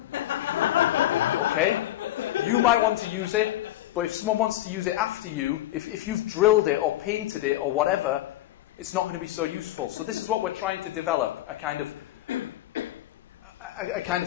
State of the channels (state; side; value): quieter; right; 14.4 dB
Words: Okay? You might want to use it, but if someone wants to use it after you, if you've drilled it or painted it or whatever, it's not going to be so useful. So this is what we're trying to develop, a kind of